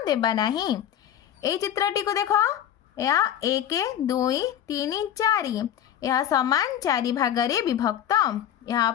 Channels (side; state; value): right; quieter; 10.5 dB